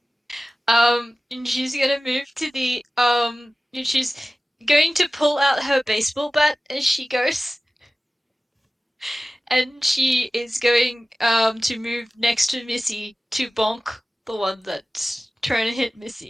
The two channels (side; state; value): both; normal; correlation 0.96